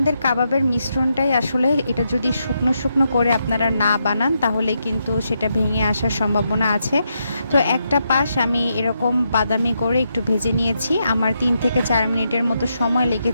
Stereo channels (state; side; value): inverted; both; correlation -0.82